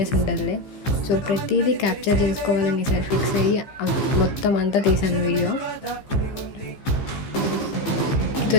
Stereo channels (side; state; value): right; late; 15 ms